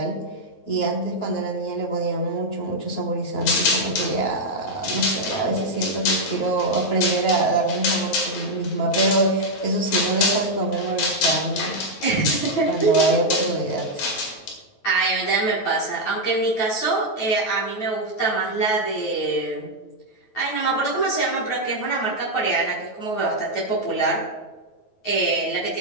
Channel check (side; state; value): right; late; 9.2 ms